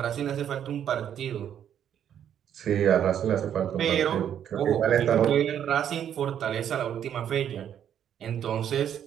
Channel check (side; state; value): left; quieter; 9.5 dB